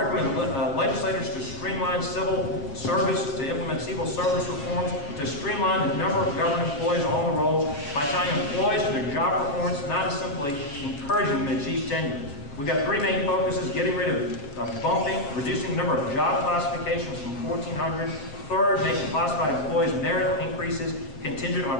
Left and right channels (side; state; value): right; late; 7.2 ms